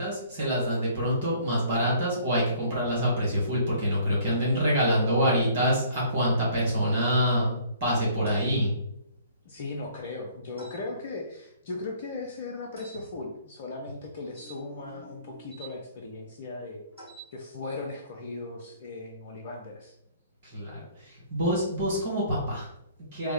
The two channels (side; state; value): both; inverted; correlation -0.57